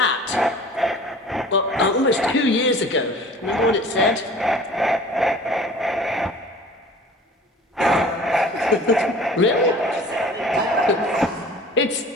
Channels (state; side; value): normal; both; correlation 0.45